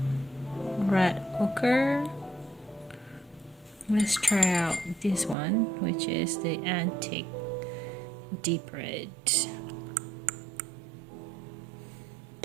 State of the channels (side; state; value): left; drops out; at 5.4 s